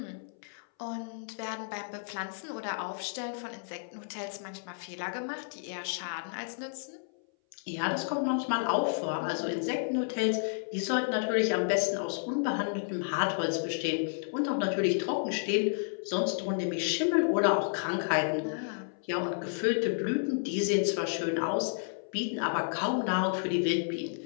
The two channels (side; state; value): right; silent; 57 dB below the other